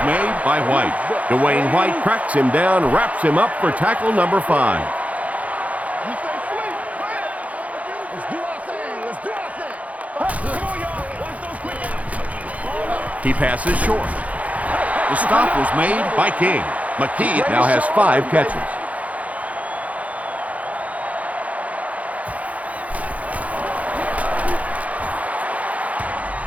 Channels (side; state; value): left; late; 0.068 ms